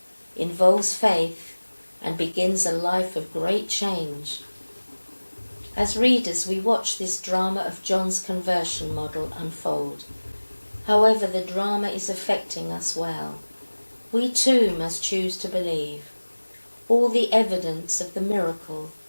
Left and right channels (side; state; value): both; inverted; correlation -1.00